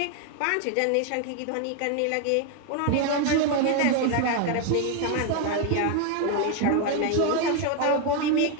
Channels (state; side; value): different; both; correlation 0.01